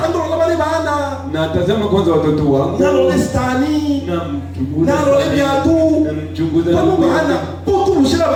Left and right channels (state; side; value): identical; both; correlation 1.00